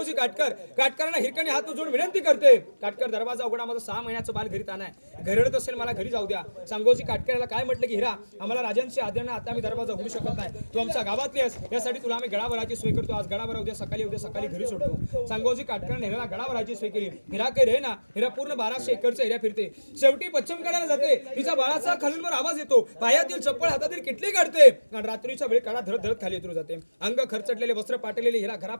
काटकरांना हिरकणी हात जोडून विनंती करते, काटकर दरवाजा उघडा, माझं 6 महिन्याचं बाल घरी ताना आहे. घरडत असेल, मला घरी जाऊ द्या. सांगोजी काटकराला काय म्हटलं की हिरा, आम्हाला राजांची आज्ञा, आता आम्ही दरवाजा उघडू शकत नाही. तू आमच्या गावातली आहेस, यासाठी तुला आम्ही गडावराची सोय करतो. आज गडावर, उद्या सकाळी घरी सोडतो. सांगोजी काटकरांनी हिराला गडावराची सोय केली. हिरा काही रे ना, हिरा पूर्ण 1200 एकरचा एरिया फिरते. शेवटी पश्चिम कडाला जाते. तिचा बाळाचा खालूनवर आवाज येतो, पायातील चप्पल हातातील किटली काढते आणि रात्रीच्या वेळी कडा धरत धरत खाली उतरू जाते. अंग खरचटलेले, वस्त्र पाटलेले हिरा घरा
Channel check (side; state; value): both; inverted; correlation -1.00